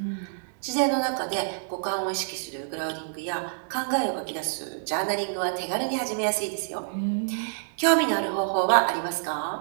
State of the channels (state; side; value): silent; left; digital silence